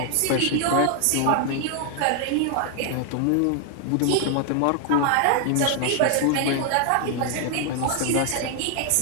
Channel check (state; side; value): different; both; correlation 0.00